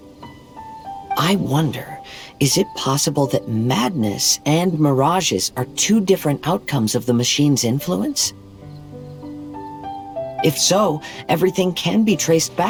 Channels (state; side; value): identical; both; correlation 1.00